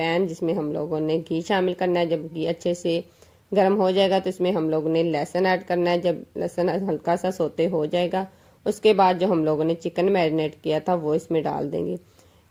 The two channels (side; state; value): both; identical; correlation 1.00